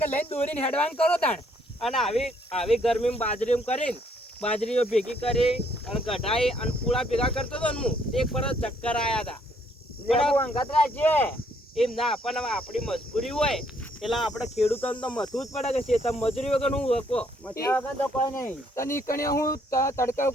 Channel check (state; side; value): normal; both; correlation 0.68